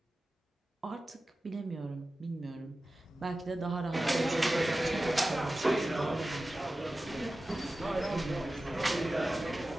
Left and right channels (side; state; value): both; normal; correlation 0.95